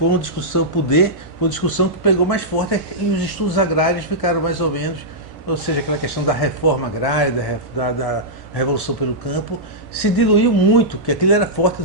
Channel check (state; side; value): late; left; 2.0 ms